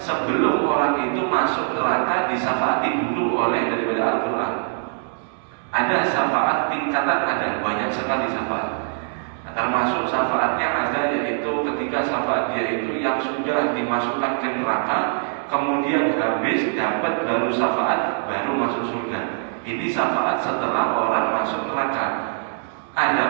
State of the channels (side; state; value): left; silent; digital silence